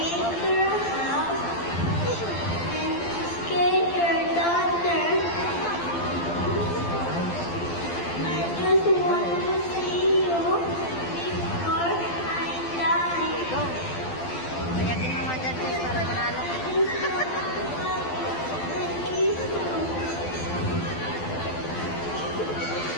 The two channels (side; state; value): right; late; 12 ms